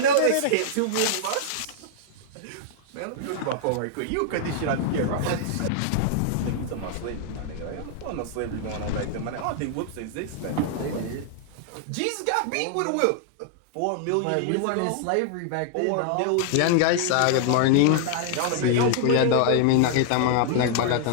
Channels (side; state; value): both; different; correlation -0.01